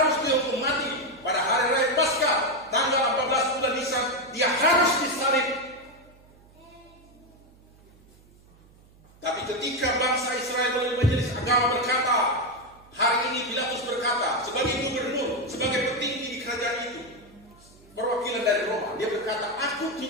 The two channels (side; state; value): right; noise; hum, 27 dB below the sound